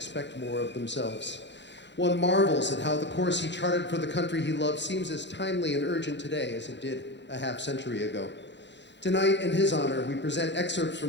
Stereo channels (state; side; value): late; right; 0.52 ms